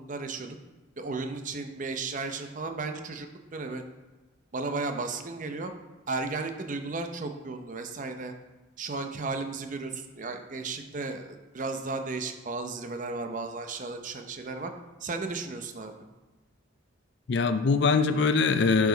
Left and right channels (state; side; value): normal; both; correlation 0.26